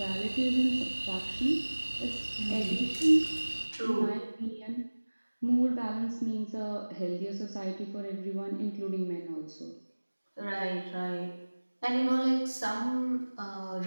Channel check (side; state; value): both; inverted; correlation -1.00